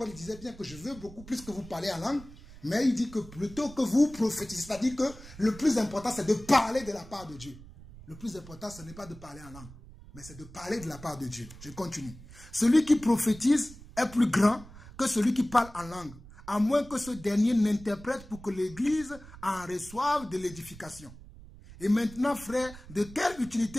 disait bien que je veux beaucoup plus que vous parlez en langue, mais il dit que plutôt que vous prophétisez, c'est-à-dire que le plus important c'est de parler de la part de Dieu. Le plus important ce n'est pas de parler en langue, mais c'est de parler de la part de Dieu. Je continue. Celui qui prophétise est plus grand que celui qui parle en langue, à moins que ce dernier n'interprète pour que l'Église en reçoive de l'édification. Et maintenant, frères, de quelle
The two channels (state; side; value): noise; right; rumble, 18 dB below the sound